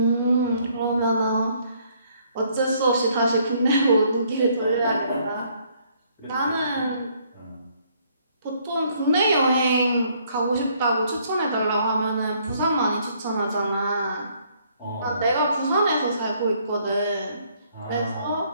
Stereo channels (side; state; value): both; inverted; correlation -0.66